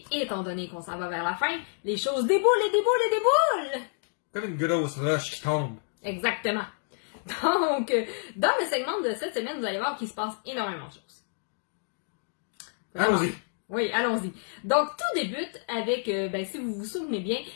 étant donné qu'on s'en va vers la fin, les choses déboulent et déboulent et déboulent. Comme une grosse roche qui tombe. Exactement. Donc, dans le segment de cette semaine, vous allez voir qu'il se passe énormément de choses. Allons-y. Oui, allons-y. Donc, tout débute avec, si vous vous souvenez bien,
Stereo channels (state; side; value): silent; right; 59 dB below the other